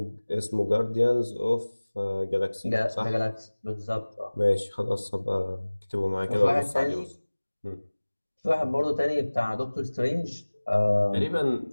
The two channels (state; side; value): inverted; both; correlation -1.00